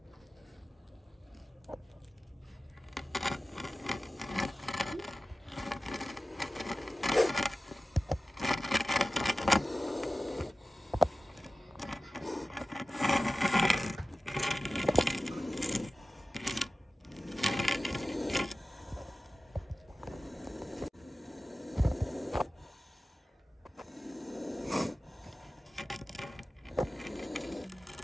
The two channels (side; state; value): both; normal; correlation 0.95